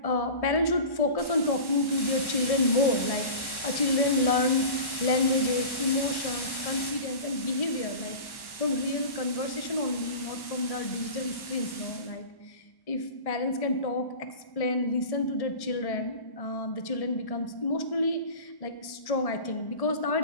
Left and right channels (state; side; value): late; right; 1.1 ms